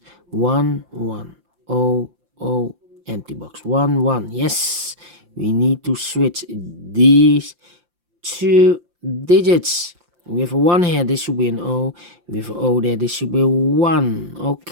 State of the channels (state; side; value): late; left; 5.7 ms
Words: 1, 1. O, empty box. 1, 1. Yes, we need to switch these two digits. We have a 1 here, this should be an O. We have an O there, this should be a 1.